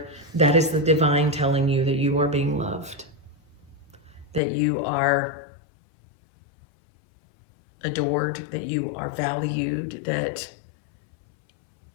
that is the divine telling you that you are being loved, that you are adored, that you are valued, that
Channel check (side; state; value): right; drops out; at 4.4 s